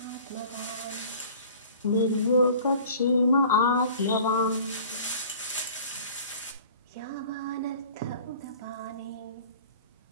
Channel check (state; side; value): inverted; both; correlation -0.46